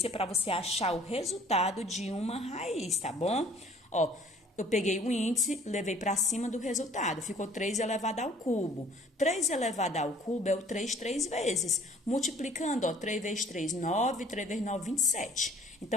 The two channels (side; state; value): both; normal; correlation 0.55